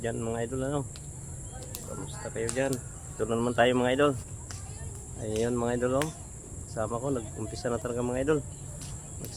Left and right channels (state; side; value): identical; both; correlation 1.00